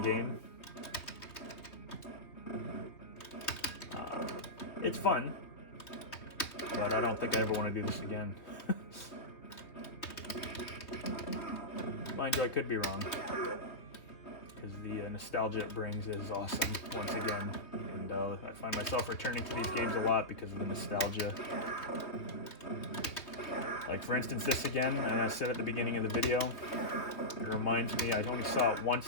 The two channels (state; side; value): late; right; 3.0 ms